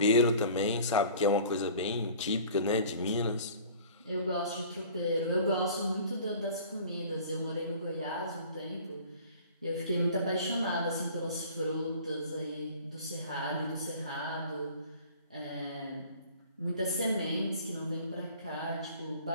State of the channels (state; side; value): inverted; both; correlation -0.46